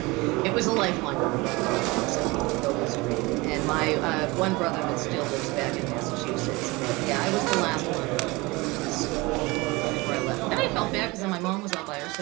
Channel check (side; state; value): left; quieter; 23.6 dB